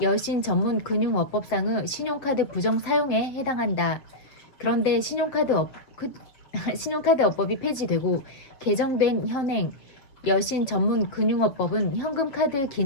여신 전문 금융업법상의 신용카드 부정 사용에 해당한다. 그런데 신용카드업법이 폐지되고 개정된 현행 여신 전문 금융업법은 현금카드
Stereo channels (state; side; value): late; right; 7.3 ms